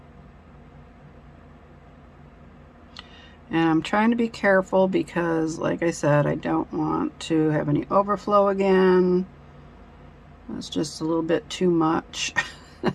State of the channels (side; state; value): both; identical; correlation 1.00